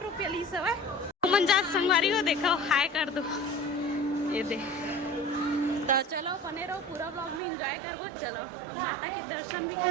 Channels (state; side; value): drops out; left; at 7.4 s